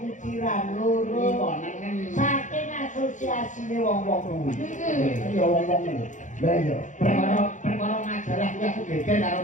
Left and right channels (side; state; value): right; late; 0.36 ms